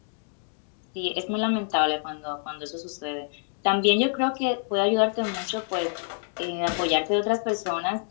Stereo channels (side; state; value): right; silent; 60 dB below the other